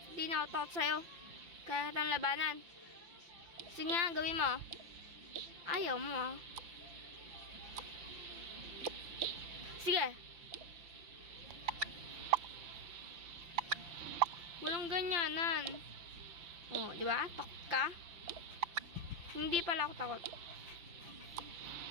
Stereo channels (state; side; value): late; left; 5.9 ms